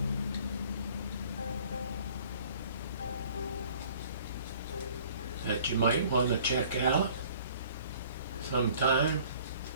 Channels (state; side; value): inverted; both; correlation -0.53